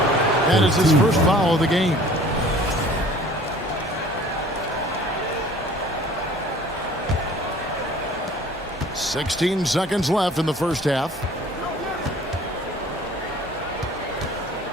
That is his first foul of the game. "16 seconds left in the first half.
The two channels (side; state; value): both; normal; correlation 0.50